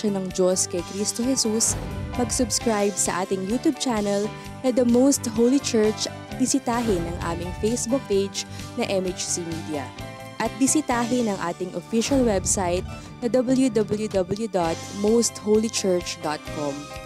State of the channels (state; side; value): identical; both; correlation 1.00